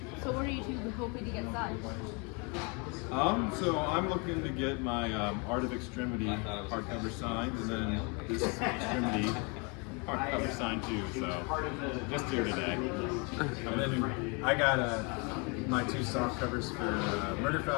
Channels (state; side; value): quieter; right; 32.3 dB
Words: So what are you two hoping to get signed? So I'm looking to get my Art of Extremity hardcover signed, and then this Extremity hardcover signed too. So just here today. And then I got my two soft covers for Murder